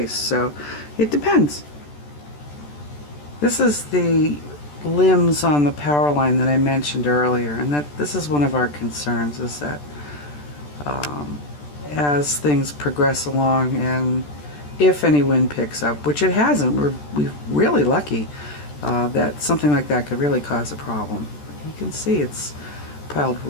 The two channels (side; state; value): right; late; 14 ms